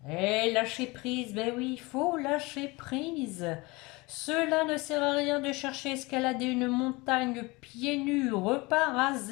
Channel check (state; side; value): quieter; right; 24.1 dB